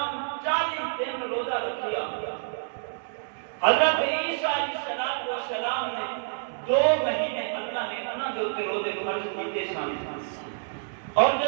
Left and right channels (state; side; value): silent; left; digital silence